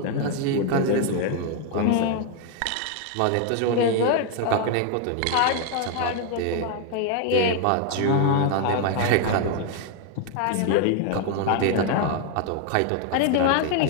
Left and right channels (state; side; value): different; both; correlation 0.01